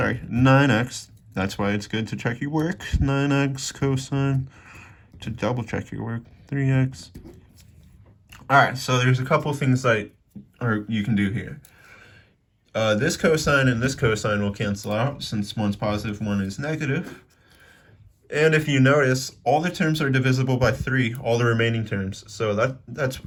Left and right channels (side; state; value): both; identical; correlation 1.00